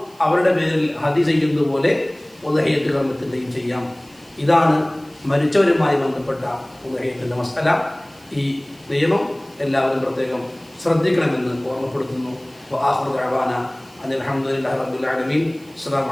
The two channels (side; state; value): right; noise; hiss, 28 dB below the sound